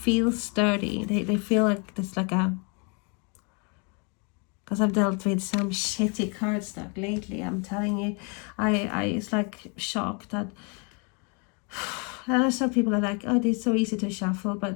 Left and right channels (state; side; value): quieter; right; 34.7 dB